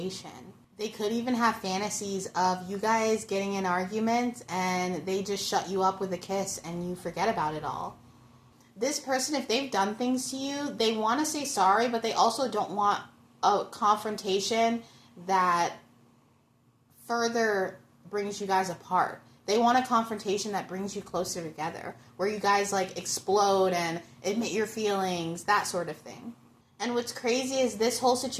They could even have fantasies of you guys getting in arguments and they just shut you up with a kiss and you forget about it all. This person, if they've done things to you, they want to say sorry, but they also don't want a confrontation that further brings you guys apart. They want a confrontation that brings you closer together, where you guys like explode and admit your feelings, that sort of thing. And what's crazy is this whole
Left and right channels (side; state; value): both; identical; correlation 1.00